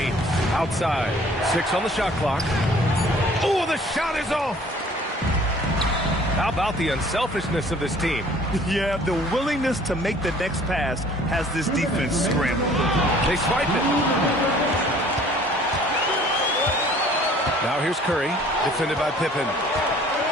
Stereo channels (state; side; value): normal; both; correlation 0.53